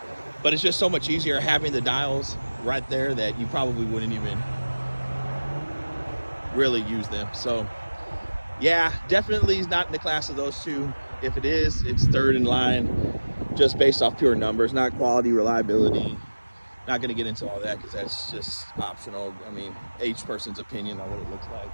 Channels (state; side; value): inverted; both; correlation -1.00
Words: but it's just so much easier having the dials right there that you probably wouldn't even really use them. So yeah, definitely is not in the class of those two. If it is, it's third in line, just based off pure numbers, not quality, reliability. Not going to get into all that because that's just optional. I mean, each person's opinion on what it looks like.